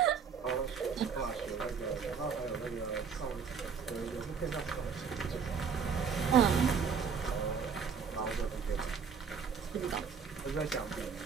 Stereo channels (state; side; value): quieter; left; 6.2 dB